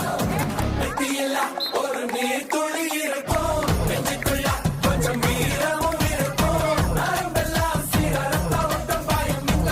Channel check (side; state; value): both; identical; correlation 1.00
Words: வெற்றியில்ல ஒரு நீர் துளி இருக்கும் நெஞ்சுக்குள்ள கொஞ்சம் வீரமும் இருக்கும் நரம்பெல்லாம் சீர ரத்த ஓட்டம் பாயும் இந்த